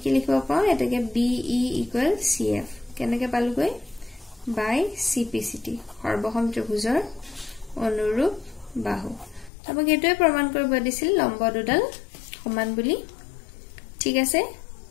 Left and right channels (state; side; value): drops out; right; at 9.5 s